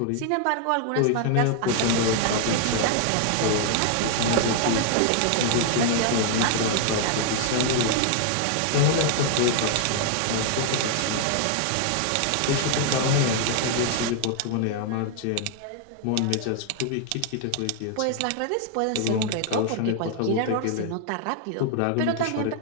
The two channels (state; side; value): different; both; correlation 0.00